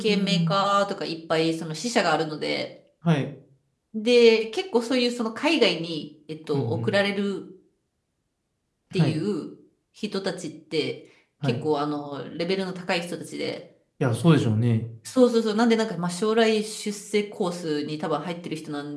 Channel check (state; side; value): identical; both; correlation 1.00